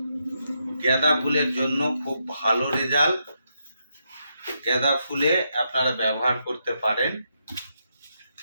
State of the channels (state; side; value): inverted; both; correlation -0.81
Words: গাঁদা ফুলের জন্য খুব ভালো রেজাল্ট। গাঁদা ফুলে আপনারা ব্যবহার করতে পারেন